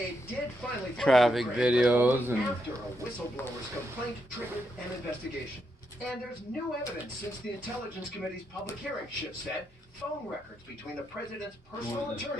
did finally traffic videos and after a whistleblower's complaint triggered an investigation. And there's new evidence since the Intelligence Committee's public hearing, Schiff said. Phone records between the president's personal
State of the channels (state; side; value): normal; both; correlation 0.81